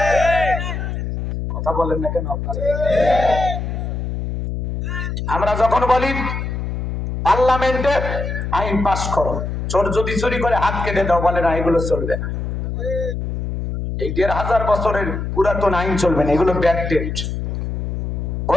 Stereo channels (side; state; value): left; noise; hum, 3 dB below the sound